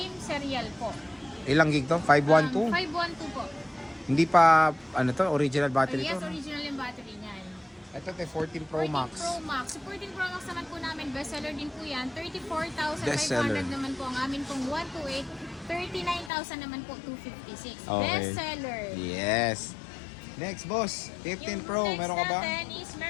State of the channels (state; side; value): drops out; right; at 16.3 s